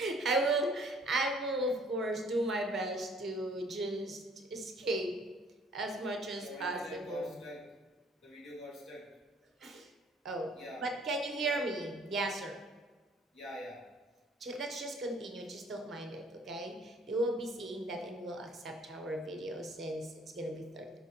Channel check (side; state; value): both; normal; correlation 0.57